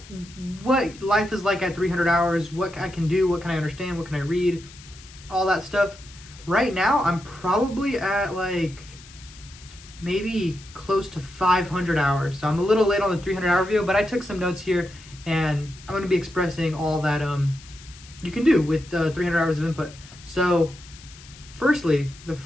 what life is like at 300 hours, what I can do, what can I understand, what can I read, all that stuff. Right now, I'm probably at like maybe close to 500 hours. So I'm a little late on the 300-hour video, but I took some notes here, and I'm going to be expressing all that you can do with 300 hours of input. So firstly, the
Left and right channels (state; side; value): noise; left; hiss, 20 dB below the sound